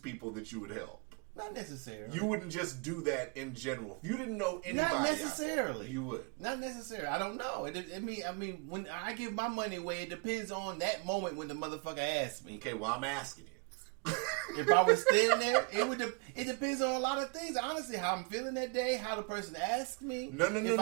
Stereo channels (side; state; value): left; quieter; 34.5 dB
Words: that you would help. Not necessarily. You wouldn't just do that in general. If you didn't know anybody, not necessarily, out there, you would. Not necessarily. I don't know. I mean, when I give my money away, it depends on that moment when the motherfucker asks me. Okay, well, I'm asking you. If I was standing there, it depends on a lot of things. Honestly, how I'm feeling that day, how the person asked me. No.